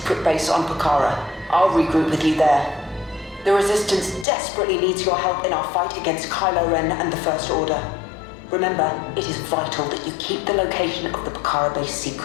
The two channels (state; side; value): drops out; right; at 4.2 s